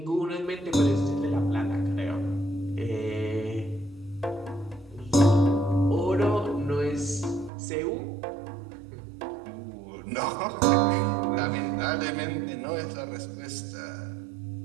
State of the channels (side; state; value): left; drops out; at 7.5 s